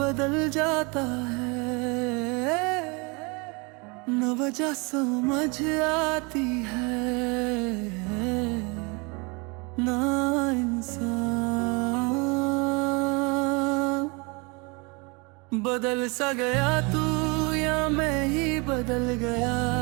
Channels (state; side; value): quieter; left; 29.3 dB